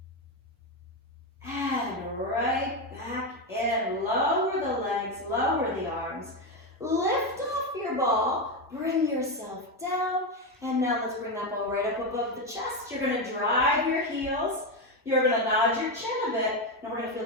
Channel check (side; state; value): both; normal; correlation 0.10